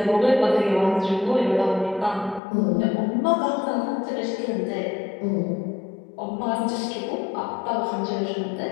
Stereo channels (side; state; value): right; drops out; at 2.4 s